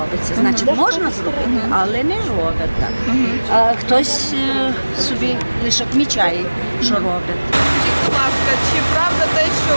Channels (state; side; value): inverted; both; correlation -1.00